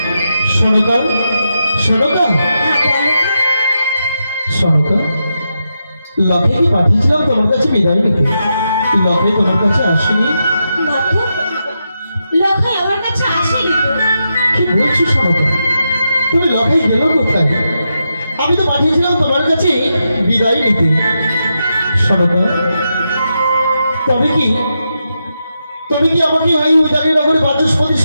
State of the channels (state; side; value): inverted; both; correlation -0.86